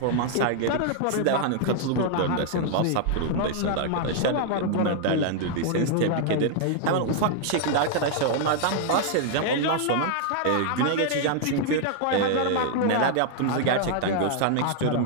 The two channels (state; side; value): different; both; correlation 0.00